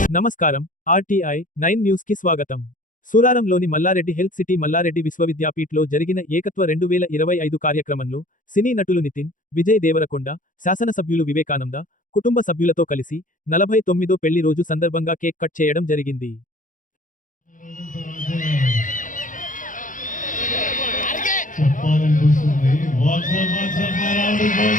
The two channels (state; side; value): late; right; 0.38 ms